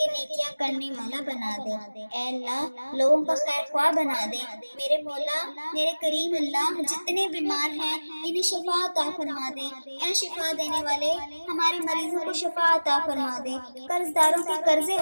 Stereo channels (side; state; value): both; inverted; correlation -1.00